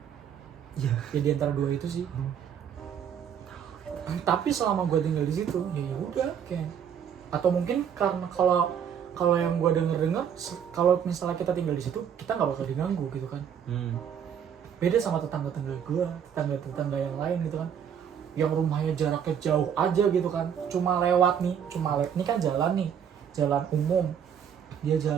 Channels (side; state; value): left; quieter; 8.3 dB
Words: Ya di antara 2 itu sih. Tapi selama gue tinggal di situ ya udah kayak, atau mungkin karena kalau yang gue dengar kalau misalnya kita tinggal di situ kita nggak bakal diganggu gitu kan. Beda sama tetangga gue, tetangga yang lain gitu kan, yang rumahnya jaraknya jauh aja gitu kan, cuma lewat nih, ini kan jalan nih, jalan umum, dia